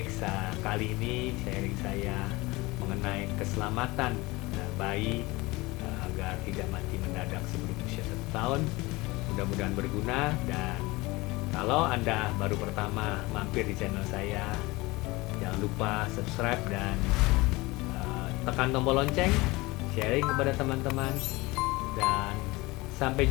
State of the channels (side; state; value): right; quieter; 22.3 dB